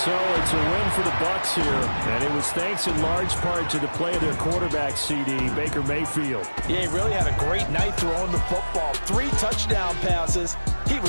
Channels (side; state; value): both; inverted; correlation -1.00